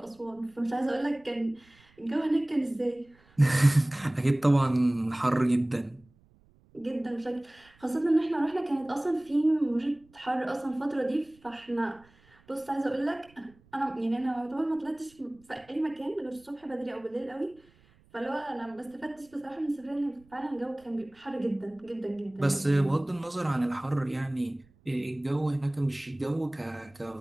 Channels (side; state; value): right; noise; rumble, 30 dB below the sound